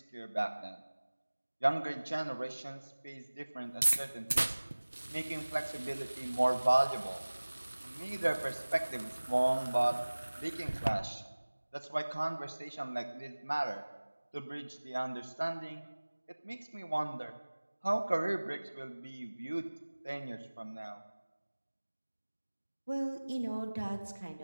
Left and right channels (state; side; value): inverted; both; correlation -1.00